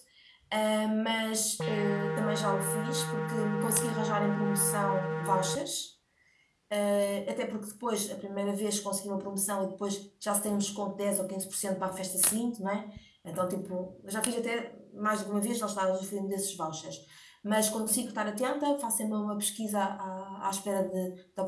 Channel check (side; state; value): both; identical; correlation 1.00